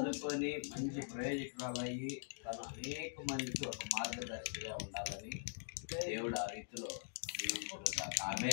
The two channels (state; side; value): silent; right; digital silence